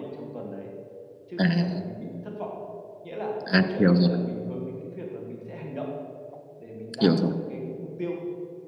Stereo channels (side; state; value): both; identical; correlation 1.00